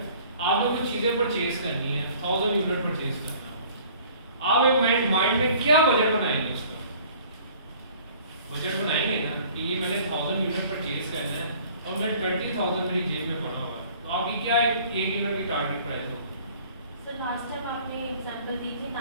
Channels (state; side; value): inverted; both; correlation -0.52